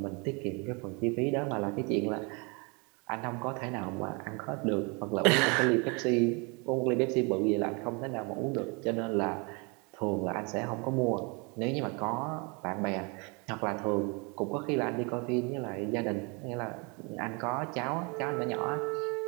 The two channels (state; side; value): quieter; left; 31.1 dB